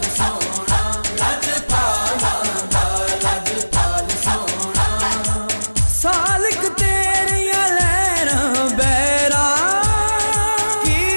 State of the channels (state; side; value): inverted; both; correlation -1.00